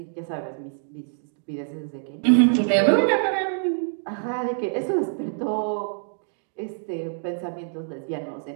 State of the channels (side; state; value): left; silent; digital silence